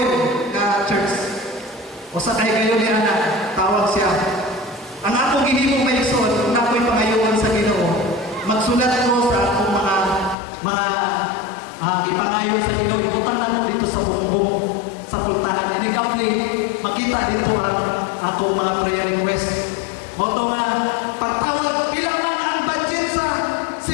na church. O sa kay kayo ni Ana, tawag siya. Ang akong gihimong Mason, kung ako'y pangayoon sa Ginoo, magsulat ko sa akong mga ipangayon sa Ginoo, ibutang na ko dito sa bumbong sa pultahan. And ikaw makita dito ang akong mga prayer request. Moto nga, pagtawag, ilang ang budget sa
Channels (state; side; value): drops out; right; at 10.4 s